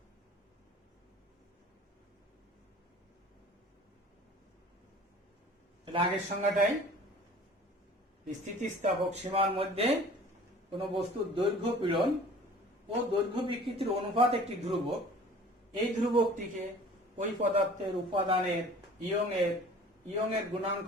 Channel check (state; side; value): normal; both; correlation 0.47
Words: আগের সংজ্ঞাটাই স্থিতিস্থাপক সীমার মধ্যে কোন বস্তুর দৈর্ঘ্য পীড়ন ও দৈর্ঘ্য বিকৃতির অনুপাত একটি ধ্রুবক। এই ধ্রুবকটিকে ওই পদার্থের উপাদানের ইয়ং এর গুণাঙ্ক